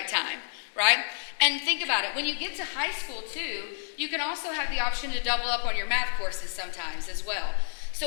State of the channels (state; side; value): silent; right; digital silence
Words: time, right? And think about it. When you get to high school too, you can also have the option to double up on your math courses sometimes as well. So